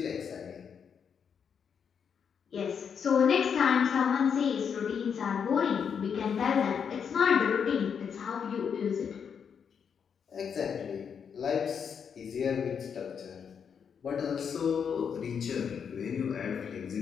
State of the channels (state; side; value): quieter; right; 7.1 dB